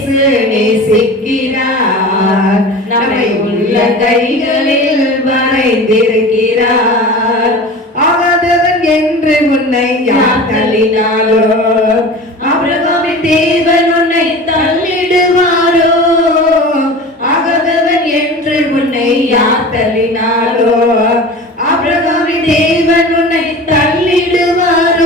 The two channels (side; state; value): both; normal; correlation 0.35